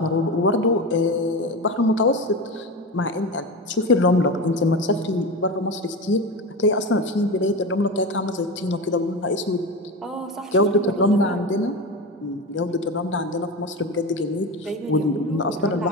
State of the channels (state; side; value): normal; both; correlation 0.24